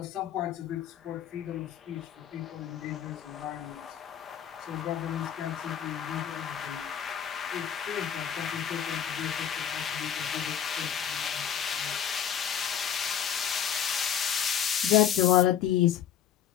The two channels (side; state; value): right; quieter; 9.1 dB